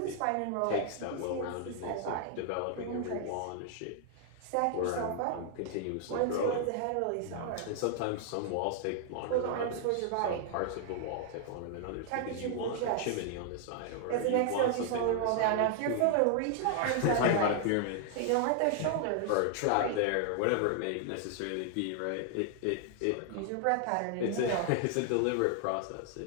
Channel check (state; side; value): different; both; correlation 0.00